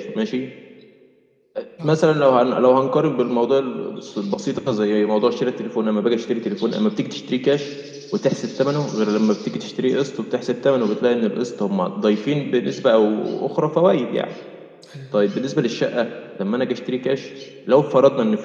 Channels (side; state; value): both; identical; correlation 1.00